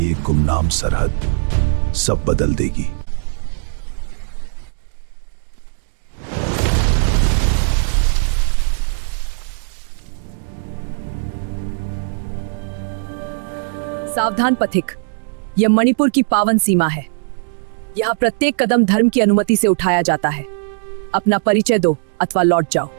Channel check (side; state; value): left; silent; 66 dB below the other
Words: एक गुमनाम सरहद सब बदल देगी। सावधान पथिक, यह मणिपुर की पावन सीमा है। यहाँ प्रत्येक कदम धर्म की अनुमति से उठाया जाता है। अपना परिचय दो अथवा लौट जाओ।